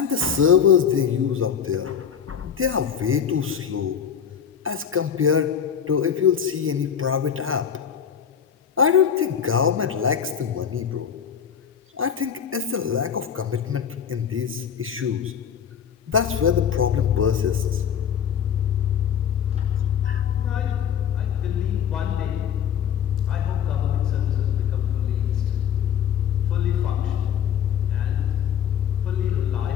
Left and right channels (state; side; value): quieter; right; 8.1 dB